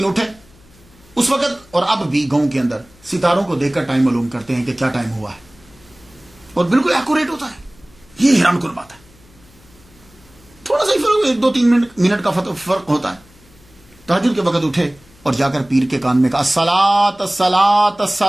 اٹھے. اس وقت اور اب بھی گاؤں کے اندر ستاروں کو دیکھ کر ٹائم معلوم کرتے ہیں کہ کیا ٹائم ہوا ہے، اور بالکل ایکوریٹ ہوتا ہے. یہ حیران کن بات ہے. تھوڑا سا ہی فرق، 1-2-3 منٹ کا فرق ہوتا ہے. تہجد کے وقت اٹھے اور جا کر پیر کے کان میں کہا الصلاۃ الصلاۃ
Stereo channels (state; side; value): noise; left; hum, 27 dB below the sound